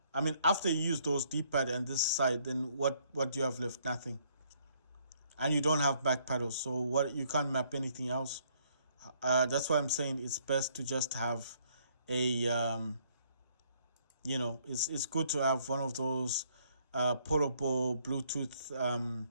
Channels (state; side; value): inverted; both; correlation -0.67